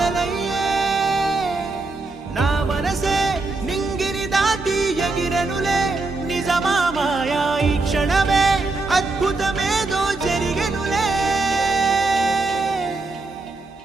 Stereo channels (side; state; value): left; quieter; 3.4 dB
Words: నా మనసే నింగిని దాటి ఎగిరనులే నిజమా మాయా ఈ క్షణమే అద్భుతమేదో జరిగెనులే